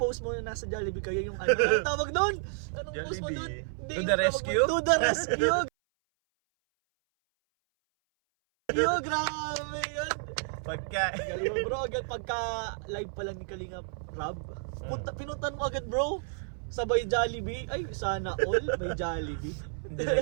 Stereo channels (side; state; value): left; silent; 57 dB below the other